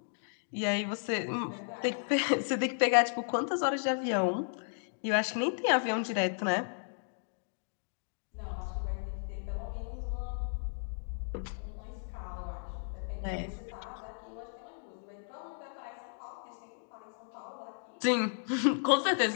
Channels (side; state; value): right; silent; digital silence